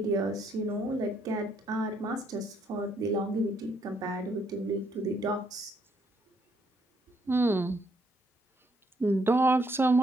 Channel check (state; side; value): normal; both; correlation 0.71